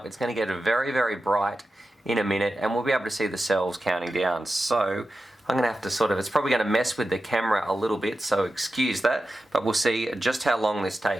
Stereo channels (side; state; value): both; normal; correlation 0.92